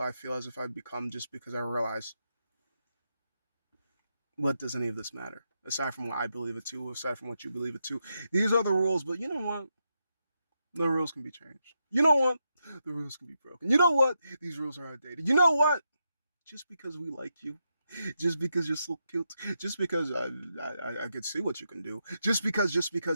I feel as if I've become, just because I realize, what does any of this matter? Aside from what I believe it to, aside from what you believe it to. These are the rules, but you know what? The rules can be changed. You know what? The rules can be broken. You know what? These rules are outdated. You know what? Just because we like you, just because you're so cute, just because I could see what you can do, just because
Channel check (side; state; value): both; inverted; correlation -0.84